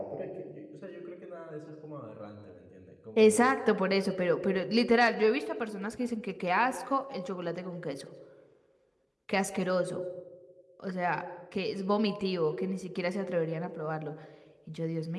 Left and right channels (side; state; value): both; identical; correlation 1.00